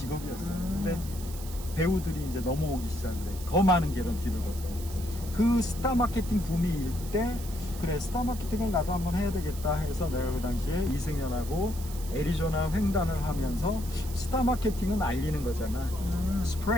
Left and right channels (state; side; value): noise; right; hiss, 14 dB below the sound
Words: 근데 배우들이 이제 넘어오기 시작해. 더 많은 개런티를 걸고. 그 스타 마케팅 붐이 일 때, 그래, 스타 마케팅을 나도 한번 해야 되겠다 해서 내가 그 당시에 이승연하고 애리조나 횡단을 하면서 스타 마케팅은 알리는 거잖아.